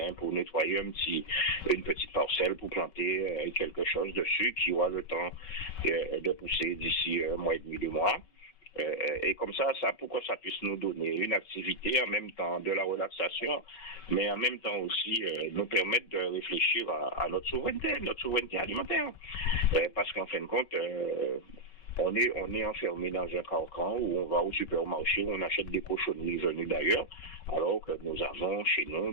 pour nettoyer une petite parcelle, pour planter quelque chose dessus qui aura le temps de pousser d'ici un mois et demi, 2 mois. Et comme ça, pour que ça puisse nous donner une activité, en même temps de la relaxation, mais en même temps aussi nous permettre de réfléchir à notre souveraineté alimentaire. Parce qu'en fin de compte, on est enfermé dans un carcan où on va au supermarché, où on achète des cochonneries venues d'ailleurs, alors que nous avons chez nous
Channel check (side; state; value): right; late; 5.3 ms